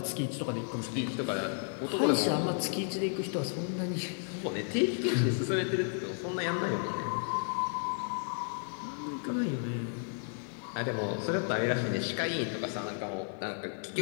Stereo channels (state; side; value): silent; right; 56 dB below the other